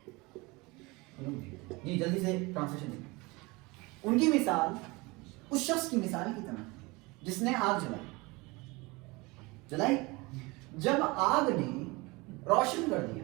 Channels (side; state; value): left; quieter; 24.4 dB